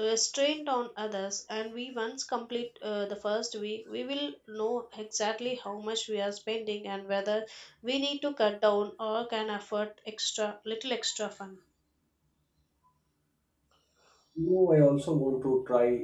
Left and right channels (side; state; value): both; identical; correlation 1.00